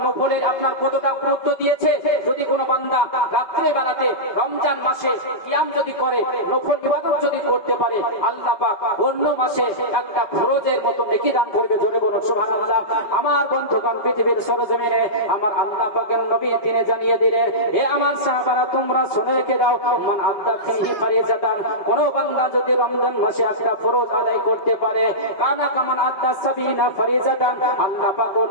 নফলের আপনার কতটা গুরুত্ব দিয়েছে। যদি কোনো বান্দা রাত্রে বেলাতে রমজান মাসে কিয়াম যদি করে, নফল ইবাদত যদি করতে পারে, আল্লাহ পাক অন্য মাসে একটা ফরজের মতো নেকি দান করবে। জোরে বলুন সুবহানাল্লাহ। আমার বন্ধুগণ, পৃথিবীর সরজমিনে আমার আল্লাহ পাকের নবী তিনি জানিয়ে দিলেন, হে আমার সাহাবারা তোমরা শুনে রেখে দাও, মান আদ্দা ফিহি ফারিজাতান, কোন বান্দা যদি রমজান মাসে একটা ফরজ আদায় করতে পারে, কানা কামান আদ্দা সাবিনা ফারিজাতান, আল্লাহ পাক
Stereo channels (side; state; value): right; late; 5.2 ms